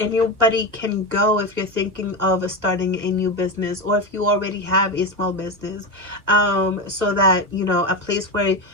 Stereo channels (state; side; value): late; left; 1.4 ms